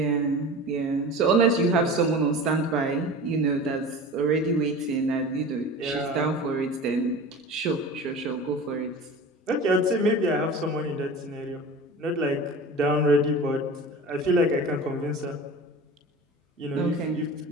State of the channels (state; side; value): normal; both; correlation 0.35